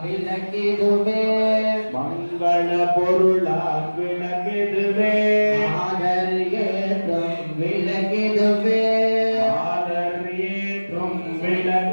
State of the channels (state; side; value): inverted; both; correlation -1.00